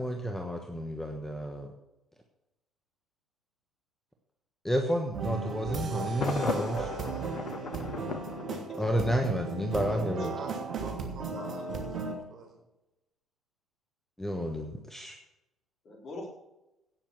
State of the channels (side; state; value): both; normal; correlation 0.72